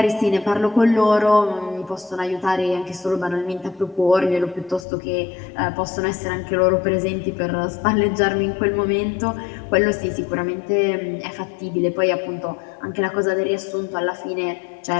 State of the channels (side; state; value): right; drops out; at 4.9 s